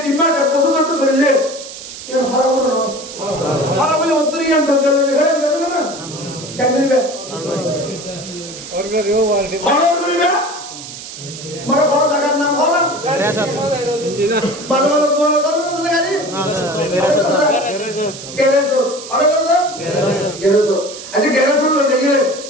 3 মাস 1 বছর চলতে চলিলে এর খারাপ হলো না খারাপ হলে অন্তরিয়ান চলে যায় গাড়ি না কেন দিবে অর্গারিও ওয়ার্ড ভালো করিবে মরে কোন জায়গার নাম হলো ভালো ভালো তোমার দরকার না গাড়ি গ্যারেজ আরে দাদা গ্যারেজ আচ্ছা গ্যারেজ হলো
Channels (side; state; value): right; noise; hiss, 12 dB below the sound